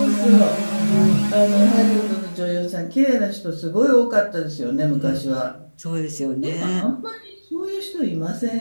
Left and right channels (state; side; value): inverted; both; correlation -1.00